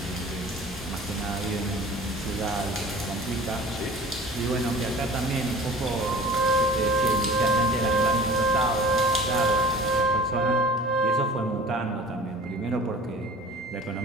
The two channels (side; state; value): both; normal; correlation 0.43